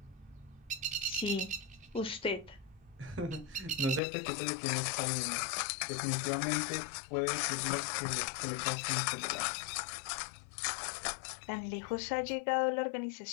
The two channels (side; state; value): right; drops out; at 4.0 s